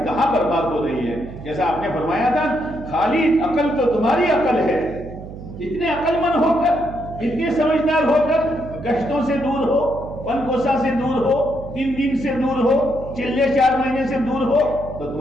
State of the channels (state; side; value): noise; right; hum, 12 dB below the sound